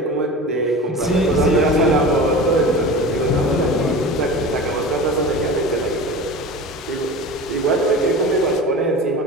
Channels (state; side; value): normal; both; correlation 0.33